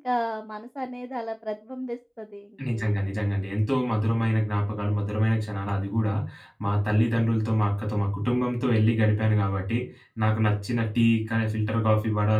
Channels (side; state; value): both; identical; correlation 1.00